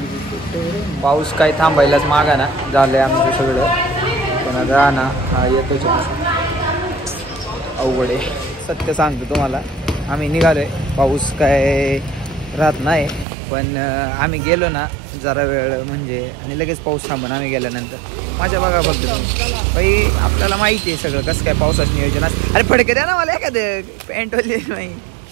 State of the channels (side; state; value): left; drops out; at 13.2 s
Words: पाऊस काय थांबायलाच मागा ना झालंय आमचं सगळं. पण आता ना हा येतोच अवघड आहे. सत्य सांगतो तुम्हाला, आम्ही निघालोय, पाऊस काय राहत नाही. पण आम्ही गेलो ना जरा वेळ म्हणजे, आणि लगेच पाऊस थांबून आम्ही गेल्यानंतर माझ्या बघा फक्त बाई. आपल्याला माहिती आहे सगळं कसं काय पावसाचं नियोजन. अरे फडके द्या ना मला एखादं, पॅन्टवाले नाही.